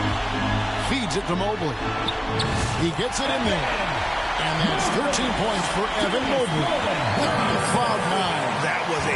Feeds it to Mobley. He gets it in there. And that's 13 points for Evan Mobley. Cloud 9. That was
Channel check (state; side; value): identical; both; correlation 1.00